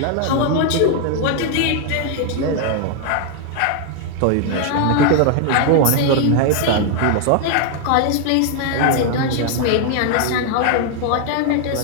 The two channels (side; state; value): both; different; correlation 0.00